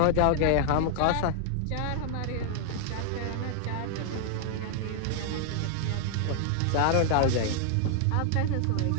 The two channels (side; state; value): both; different; correlation 0.00